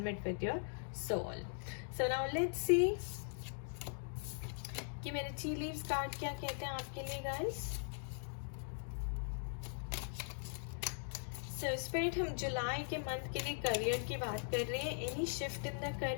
with your soul. So now let's see कि मेरे टी लीव्स कार्ड क्या कहते हैं आपके लिए गाइस. सो स्पिरिट, हम जुलाई के मंथ के लिए करियर की बात कर रहे हैं. Any shift in the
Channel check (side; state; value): right; silent; digital silence